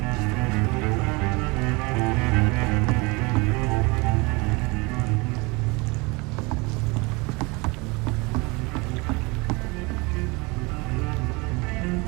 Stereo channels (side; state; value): left; quieter; 26.6 dB